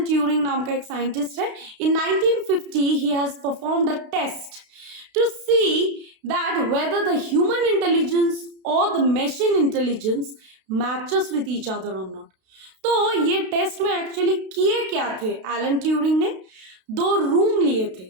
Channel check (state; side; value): late; left; 32 ms